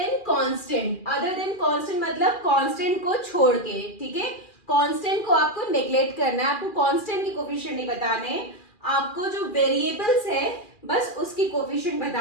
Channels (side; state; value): right; late; 2.4 ms